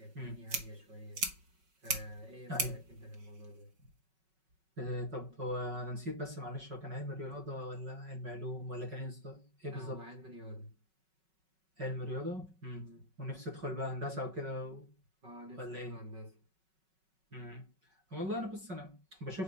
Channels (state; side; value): late; left; 5.3 ms